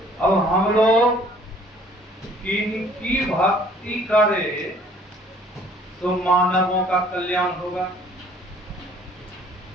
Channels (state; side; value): normal; both; correlation 0.56